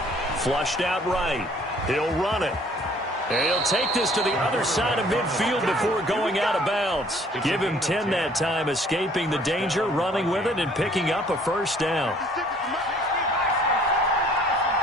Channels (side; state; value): both; normal; correlation 0.57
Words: Flushed out right. He'll run it. And he'll take this to the other side of midfield before going out of bounds. Give him 10 that time, escaping the danger, running with it, and picking up a 1st down.